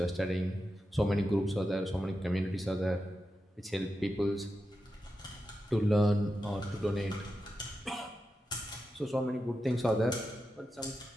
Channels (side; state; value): both; normal; correlation 0.89